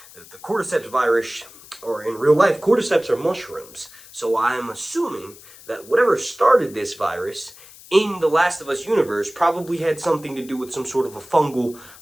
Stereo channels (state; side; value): noise; left; hiss, 20 dB below the sound